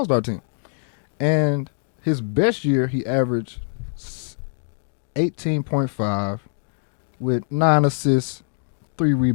team. And his best year, he averaged 18.5 with 9 assists, 3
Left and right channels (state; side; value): silent; right; 63 dB below the other